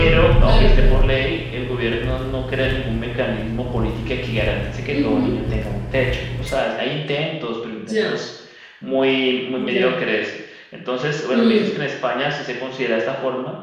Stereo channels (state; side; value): identical; both; correlation 1.00